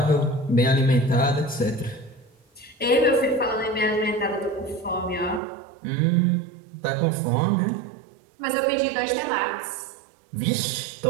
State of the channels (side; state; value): left; drops out; at 5.4 s